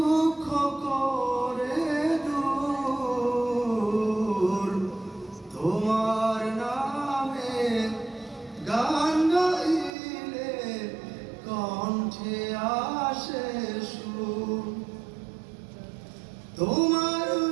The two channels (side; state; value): left; drops out; at 9.9 s